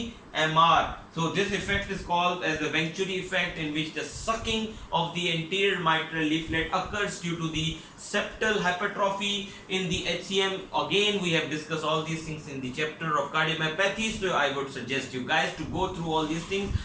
MR. So this effect is called as the Venturi effect, in which the sucking of the anterior mitral leaflet occurs due to the septal hypertrophy. In the HCM, again we have discussed all these things in the chapter of cardiomyopathy, so I would suggest you guys to go through all these things.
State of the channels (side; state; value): both; identical; correlation 1.00